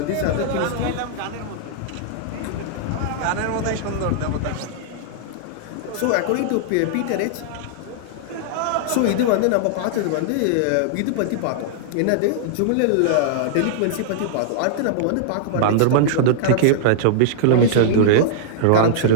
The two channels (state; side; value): different; both; correlation -0.01